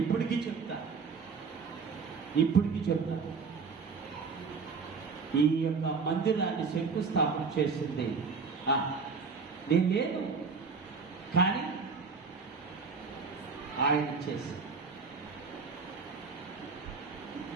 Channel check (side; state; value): left; quieter; 5.1 dB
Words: చెప్తాను. ఈ యొక్క మందిరాన్ని శంకుస్థాపన చేసింది నేను లేదు, కానీ ఆయన చేసి